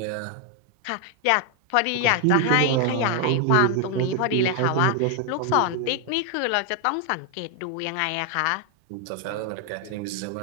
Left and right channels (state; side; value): different; both; correlation 0.00